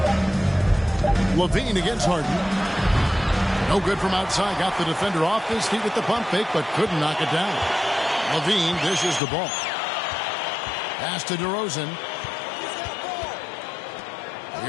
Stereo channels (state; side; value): drops out; right; at 9.2 s